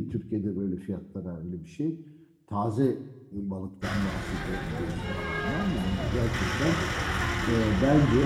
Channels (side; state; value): both; identical; correlation 1.00